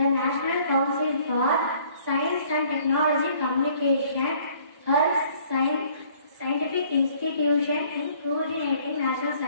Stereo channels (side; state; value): both; inverted; correlation -0.58